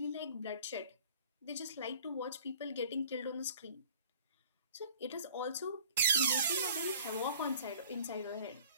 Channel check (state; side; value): inverted; both; correlation -0.48